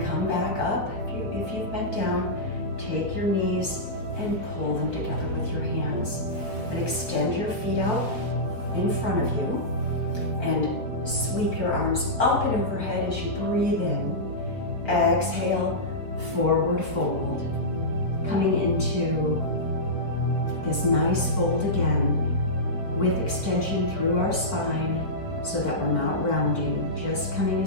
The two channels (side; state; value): right; late; 4.2 ms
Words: come back up. If you've bent down, take your knees and pull them together with your hands. And extend your feet out in front of you and sweep your arms up and overhead as you breathe in. Exhale, forward fold. Coming into this nice fold again with extension through our spine so that we're not rounding, just coming